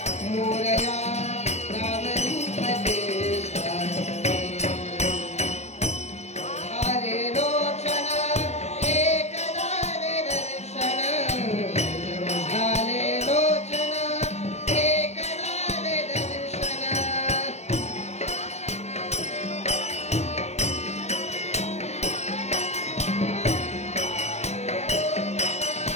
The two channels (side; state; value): right; late; 0.32 ms